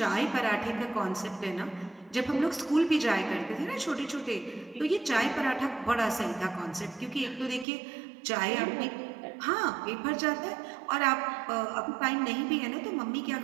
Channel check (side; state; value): left; drops out; at 7.7 s